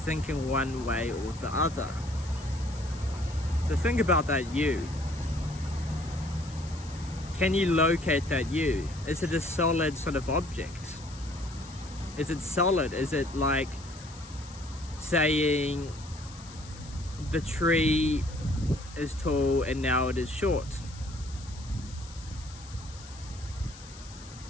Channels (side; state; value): left; noise; hiss, 18 dB below the sound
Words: one way or the other. So think about that you. Can you locate that you? Is it a solid sort of object? Is it solid? Is it like saying the tree is tall and now it is short?